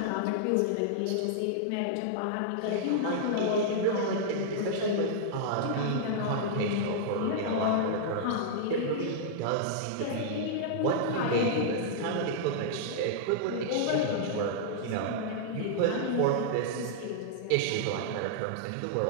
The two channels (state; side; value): different; both; correlation -0.02